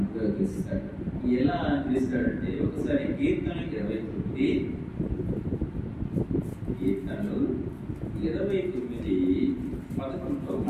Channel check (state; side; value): identical; both; correlation 1.00